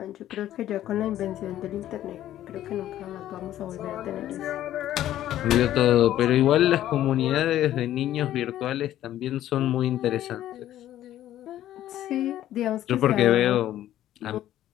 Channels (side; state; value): right; quieter; 12.7 dB